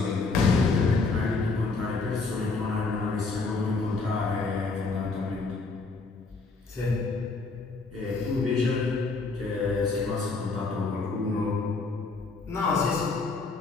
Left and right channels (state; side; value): quieter; right; 4.0 dB